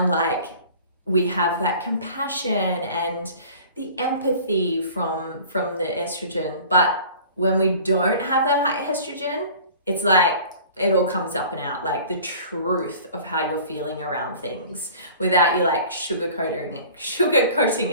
like, we have that compassion and the empathy from the estrogen. But when we don't have that high estrogen, it's like it all comes up and out, like the truth of how you're feeling around things, without you like sugarcoating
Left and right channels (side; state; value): both; inverted; correlation -0.45